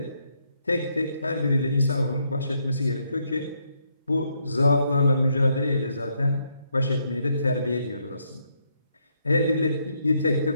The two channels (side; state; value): both; inverted; correlation -0.76